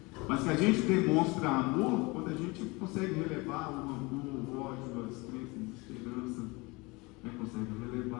Mas que a gente demonstra amor quando a gente consegue relevar o rancor, o ódio, a descrença, a desesperança, né? Consegue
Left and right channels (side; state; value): right; quieter; 25.2 dB